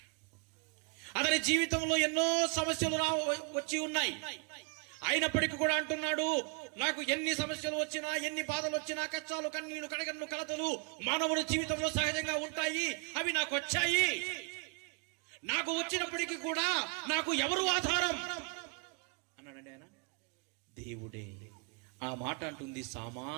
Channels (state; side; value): quieter; left; 33.5 dB